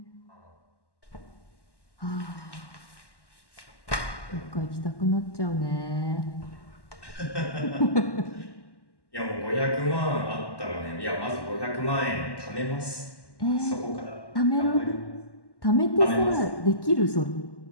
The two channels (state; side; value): late; right; 1.1 ms